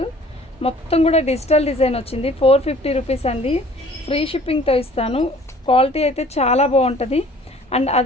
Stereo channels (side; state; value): both; normal; correlation 0.52